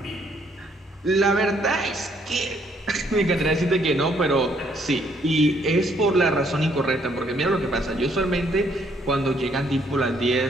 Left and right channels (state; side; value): normal; both; correlation 0.68